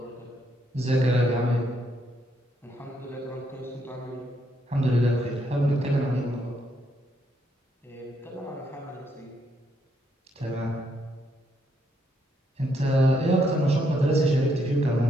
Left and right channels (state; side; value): normal; both; correlation 0.75